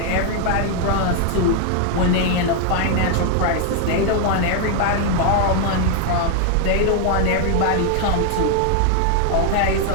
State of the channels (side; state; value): both; different; correlation 0.00